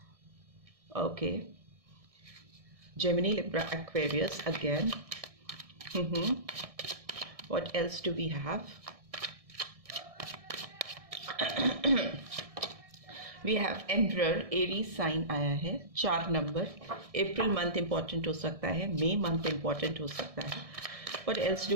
Okay, Gemini, Libra, Aquarius again. What else do we have? We have emperor. Aries sign आया है, 4 नंबर. अप्रैल मंथ इंपॉर्टेंट हो सकता है, मई मंथ इंपॉर्टेंट हो सकता है. What else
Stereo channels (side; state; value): left; late; 1.6 ms